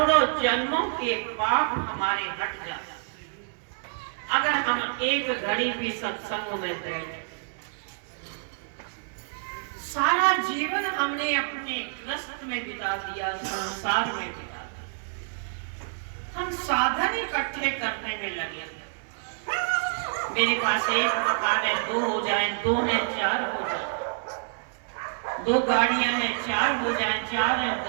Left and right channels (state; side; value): silent; left; 60 dB below the other